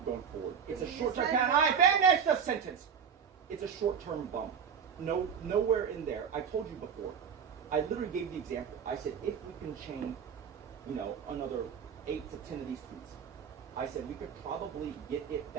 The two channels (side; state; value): left; quieter; 7.2 dB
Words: going forward. It's a short-term. Can I finish the sentence? It's a short-term bump. Nowhere in there. I told you before. I literally gave the example. I said if we can chain, another 8 to 10 of these tweets, I said we could probably get it